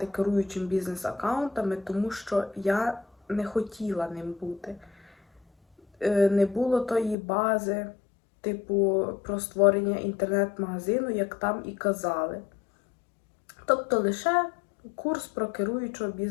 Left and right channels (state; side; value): drops out; right; at 7.2 s